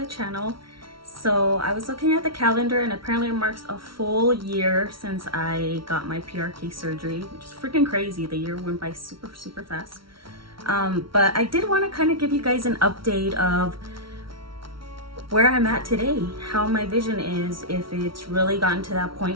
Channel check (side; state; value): left; late; 0.74 ms